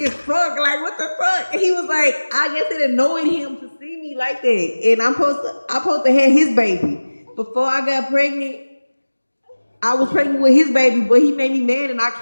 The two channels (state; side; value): inverted; both; correlation -1.00